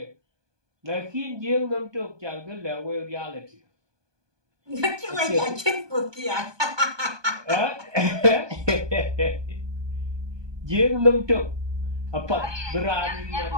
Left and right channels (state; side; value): late; left; 1.2 ms